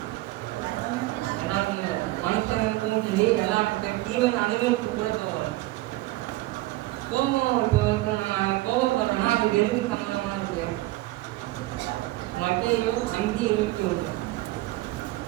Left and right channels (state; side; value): quieter; left; 18.6 dB